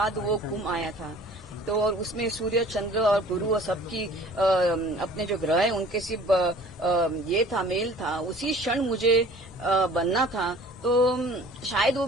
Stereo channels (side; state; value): both; normal; correlation 0.49